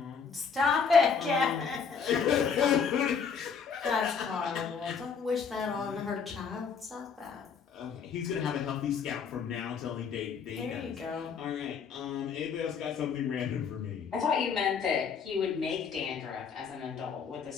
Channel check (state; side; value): quieter; right; 6.2 dB